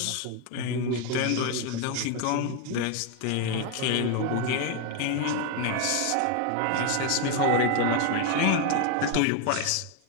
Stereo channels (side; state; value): both; different; correlation 0.01